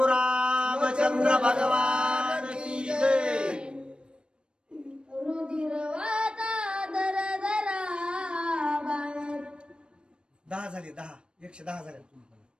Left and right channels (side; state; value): left; late; 0.054 ms